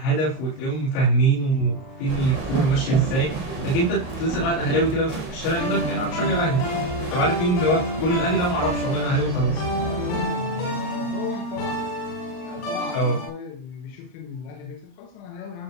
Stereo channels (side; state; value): right; late; 39 ms